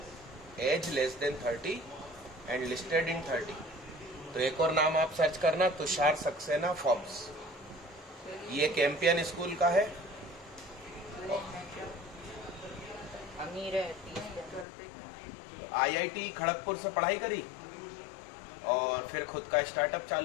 age less than 30 and listed in 30। तो एक और नाम आप सर्च करना, तुषार सक्सेना फोर्ब्स। ये कैंपियन स्कूल का है। अमीर है 30। IIT खड़गपुर से पढ़ाई करी और फिर खुद का स्टार्टअप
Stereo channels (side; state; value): right; drops out; at 14.7 s